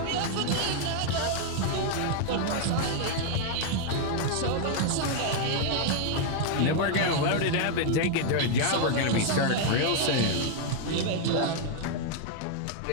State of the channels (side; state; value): both; different; correlation 0.00